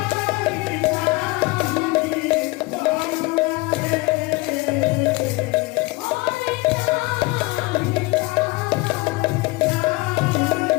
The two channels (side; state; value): right; quieter; 23.0 dB